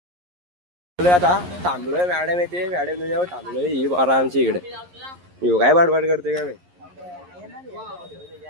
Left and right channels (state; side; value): late; left; 11 ms